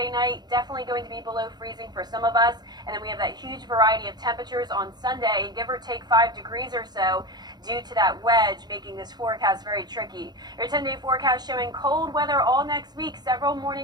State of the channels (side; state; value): left; late; 0.20 ms